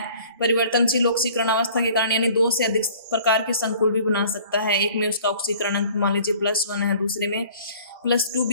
परिवर्तनशील ऑक्सीकरण अवस्था के कारण, यानी 2 से अधिक प्रकार के संकुल भी बना सकता है। एक में उसका ऑक्सीकरण अंक मान लीजिए +1 है, दूसरे में +2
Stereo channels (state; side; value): inverted; both; correlation -0.51